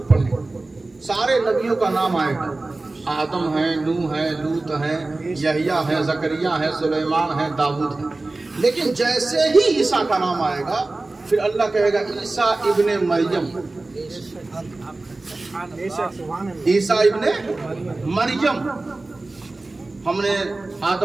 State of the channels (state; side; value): quieter; left; 3.1 dB